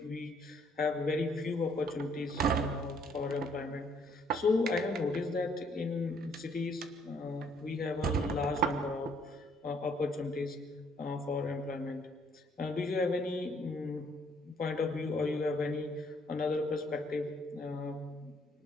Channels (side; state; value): both; normal; correlation 0.66